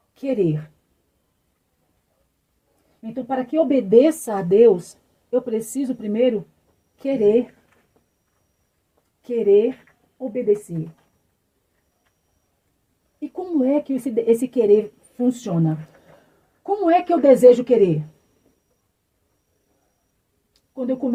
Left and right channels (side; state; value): both; identical; correlation 1.00